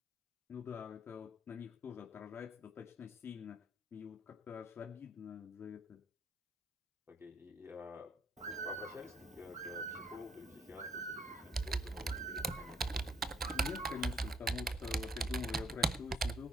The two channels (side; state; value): both; normal; correlation 0.67